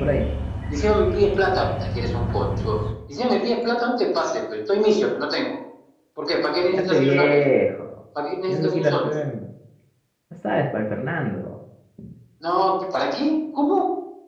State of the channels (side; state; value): both; identical; correlation 1.00